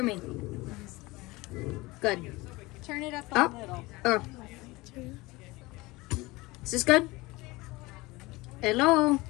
me? Good. Turn it up a little. Oh. Is this good? Hello?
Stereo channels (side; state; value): right; quieter; 21.8 dB